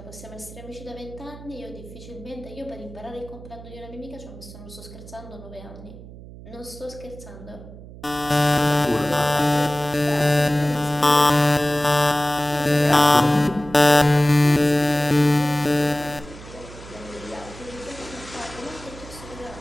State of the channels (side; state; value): right; noise; hum, 16 dB below the sound